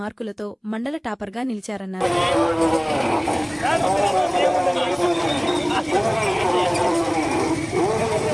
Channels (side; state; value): both; identical; correlation 1.00